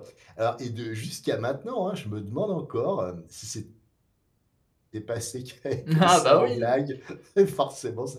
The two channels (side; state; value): both; identical; correlation 1.00